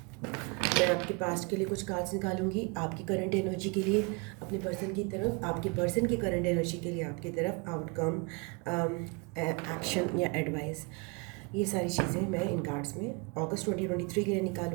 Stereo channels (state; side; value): quieter; left; 31.3 dB